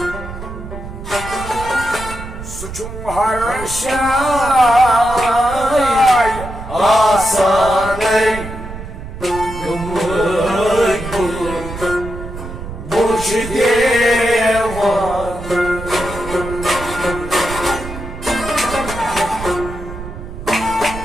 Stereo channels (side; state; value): right; noise; rumble, 10 dB below the sound